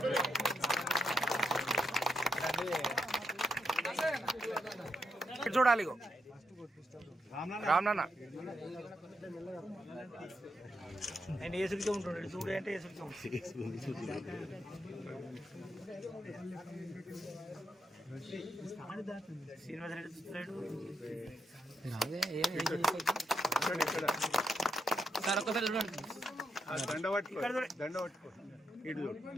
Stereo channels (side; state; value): both; normal; correlation 0.81